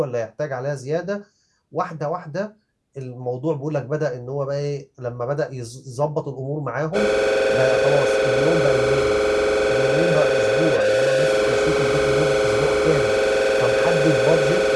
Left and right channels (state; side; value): identical; both; correlation 1.00